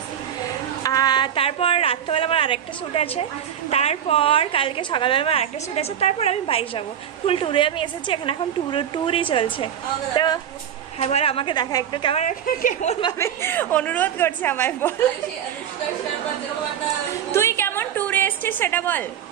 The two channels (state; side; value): quieter; left; 9.5 dB